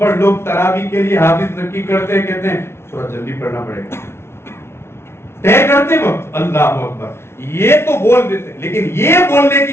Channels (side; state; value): right; late; 0.12 ms